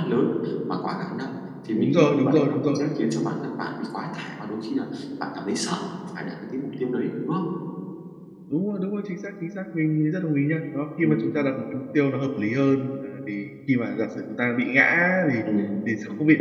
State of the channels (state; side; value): identical; both; correlation 1.00